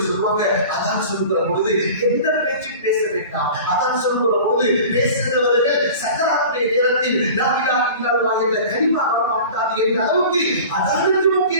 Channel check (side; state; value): both; inverted; correlation -0.39